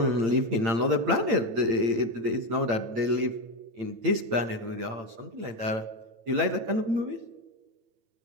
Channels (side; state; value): left; late; 8.8 ms